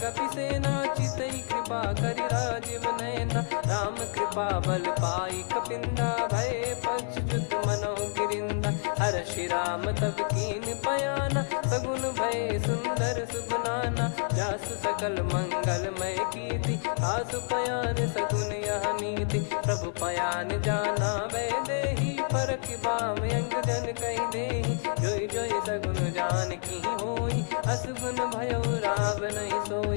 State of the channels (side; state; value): right; silent; digital silence